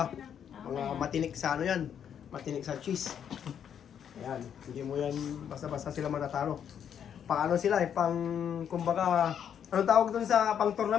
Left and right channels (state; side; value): quieter; right; 8.6 dB